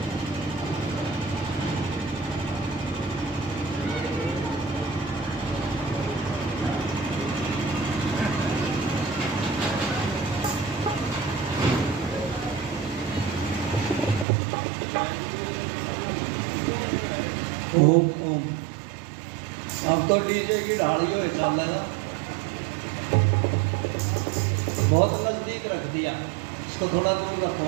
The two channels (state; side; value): drops out; left; at 14.2 s